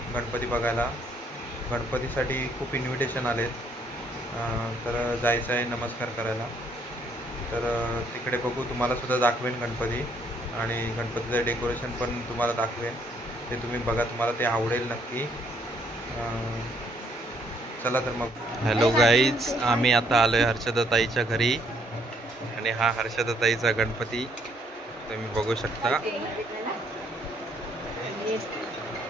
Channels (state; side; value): normal; both; correlation 0.68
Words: गणपती बघायला. गणपतीसाठी खूप इन्व्हिटेशन आलेत, तर जायचं आहे नमस्कार करायला. तर तिकडे बघू, तुम्हालासुद्धा दाखवेन गणपती आणि गणपतीचं डेकोरेशन पण तुम्हाला दाखवेन. ते तुम्ही बघा, तुम्हाला ते आवडेल नक्की. चला तर मग. हॅलो गाईज, आम्ही आता आलोय हर्षदाताईच्या घरी आणि हा हर्षदाताईचा गणपती तुम्ही बघू शकता.